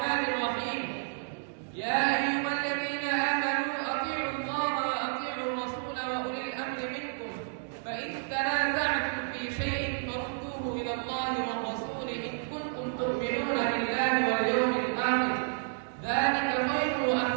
الرحيم. يا أيها الذين آمنوا أطيعوا الله وأطيعوا الرسول وأولي الأمر منكم، فإن تنازعتم في شيء فردوه إلى الله والرسول إن كنتم تؤمنون بالله واليوم الآخر، ذلك خير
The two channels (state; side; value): silent; left; digital silence